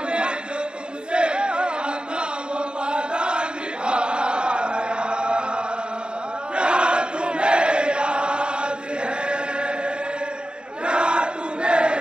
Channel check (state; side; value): late; left; 0.050 ms